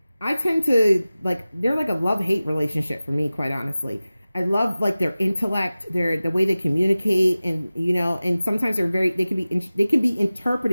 I tend to, like, they're like a love-hate relationship for me, quite honestly. I love, like, their intellect, the way they communicate, and, you know, and sometimes they can be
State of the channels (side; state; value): both; inverted; correlation -0.97